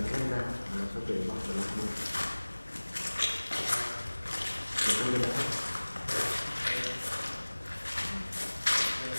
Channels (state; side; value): inverted; both; correlation -1.00